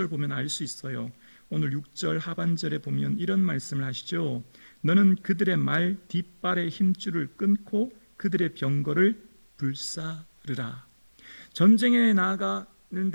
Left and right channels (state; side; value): inverted; both; correlation -1.00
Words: 보면 알 수 있어요. 오늘 6절 하반절에 보면 이런 말씀을 하시죠. 너는 그들의 말 뒷발의 힘줄을 끊고 그들의 병거를 불사르라. 전쟁에